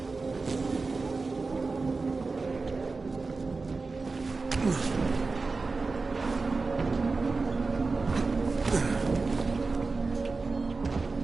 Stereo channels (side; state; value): left; quieter; 4.0 dB